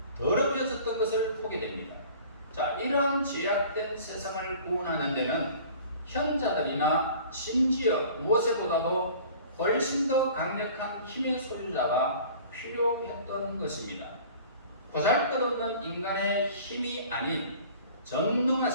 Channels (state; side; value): inverted; both; correlation -0.46